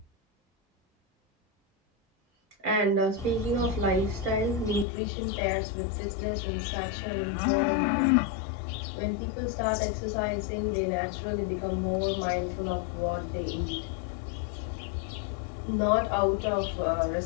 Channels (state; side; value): drops out; right; at 4.9 s